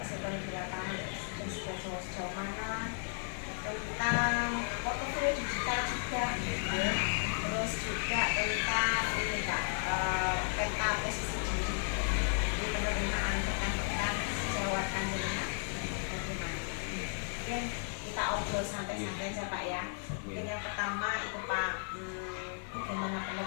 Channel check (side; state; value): right; silent; 55 dB below the other